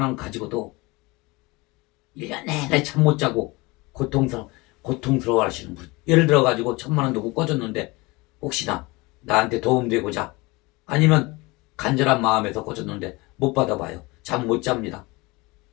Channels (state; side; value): quieter; right; 23.8 dB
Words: 원 가지고도 1년 내내 잠 못 자고 고통스러워 하시는 분. 예를 들어 가지고 1,000만 원 두고 꺼졌는데 혹시나 나한테 도움되고자 아니면 간절한 마음에서 꺼졌는데 못 받아봐요. 잠 못 잡니다.